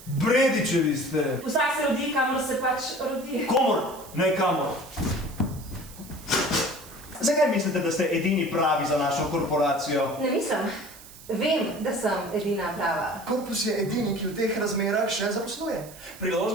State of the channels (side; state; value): right; noise; hiss, 19 dB below the sound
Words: Bredičevi ste. Vsak se rodi, kamor se pač rodi. Komor, ne kamor. Zakaj mislite, da ste edini pravi za našo korporacijo? Ne mislim. Vem, da sem edina prava. Korpus je edini, ki v teh razmerah še zaposluje.